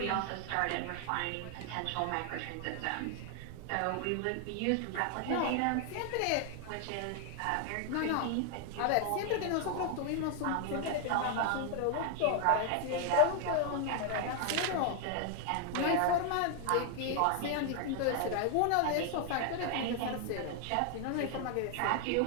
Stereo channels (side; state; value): both; different; correlation 0.00